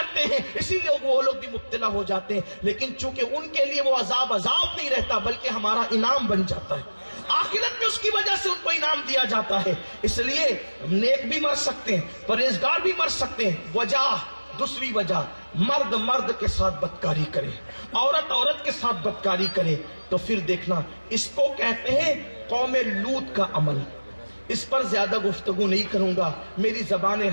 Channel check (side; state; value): both; inverted; correlation -1.00